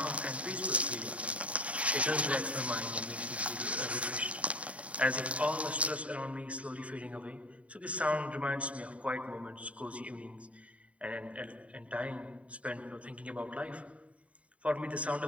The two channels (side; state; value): left; late; 0.065 ms